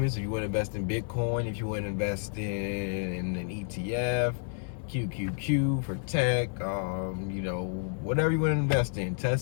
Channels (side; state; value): right; silent; 58 dB below the other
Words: If you want to invest in Bitcoin, if you want to invest in an ETF, QQQ for tech, whatever you want to invest in,